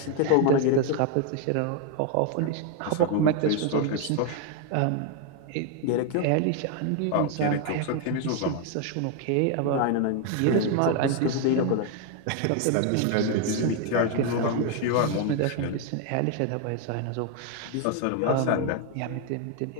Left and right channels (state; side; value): different; both; correlation 0.01